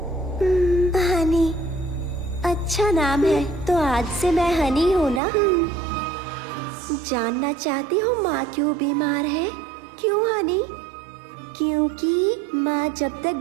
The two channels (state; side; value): drops out; left; at 5.2 s